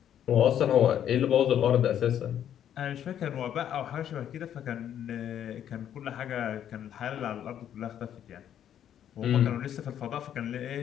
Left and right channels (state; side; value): quieter; right; 10.1 dB